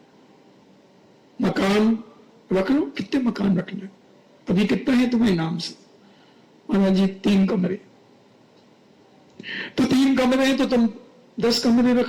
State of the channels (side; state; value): both; identical; correlation 1.00